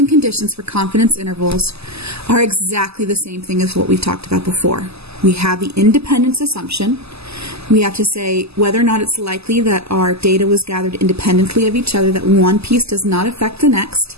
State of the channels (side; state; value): left; late; 0.79 ms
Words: conditions for confidence intervals are exactly the same thing as what we've talked about before. We have the independence assumption. We have to say whether or not it's likely that our data was gathered independently of each other, that one piece does not affect the next.